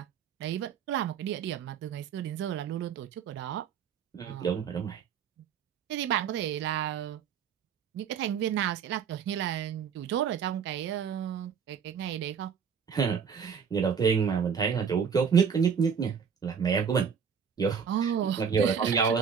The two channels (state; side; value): quieter; left; 7.0 dB